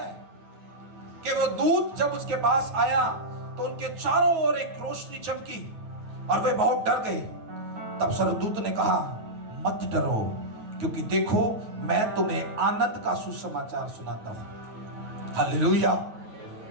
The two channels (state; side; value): late; left; 9.3 ms